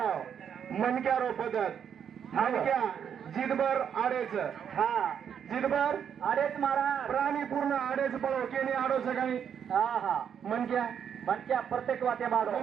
मनक्या रोपदत मनक्या जिदभर आडेच जिदभर आडेच मारा प्राणी पूर्ण आडेच पळो केनी आडो सकाळी मनक्या मनक्या प्रत्येक वाटे माडो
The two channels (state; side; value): quieter; left; 8.2 dB